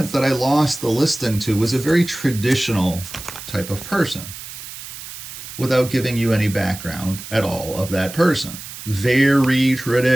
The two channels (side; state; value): right; noise; hiss, 12 dB below the sound